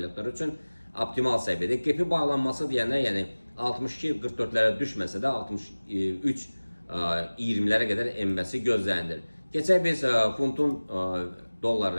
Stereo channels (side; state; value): both; inverted; correlation -1.00